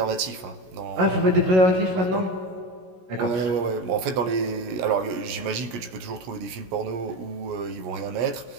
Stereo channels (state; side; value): late; left; 16 ms